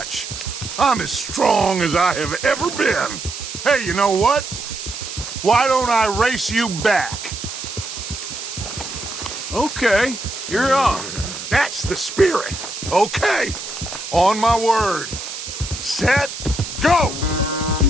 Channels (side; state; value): right; noise; hiss, 8 dB below the sound